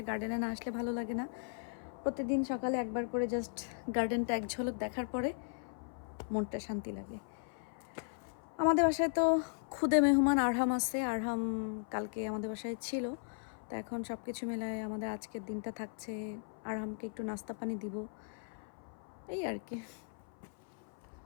গার্ডেনে না আসলে ভালো লাগে না। প্রতিদিন সকালে একবার করে জাস্ট গার্ডেনটা এক ঝলক দেখার পরে মনটা শান্তি লাগে। আমাদের বাসায় তো খুদে মেহমান আরহাম আছে। আরহাম কালকে আমাদের বাসায় ছিল, তো এখন সব কিছু মিলায় আমাদের আজকের দিনটা থাকছে আরহামকে একটু নাস্তা পানি দিব, এই আর কি।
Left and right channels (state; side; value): silent; right; 53 dB below the other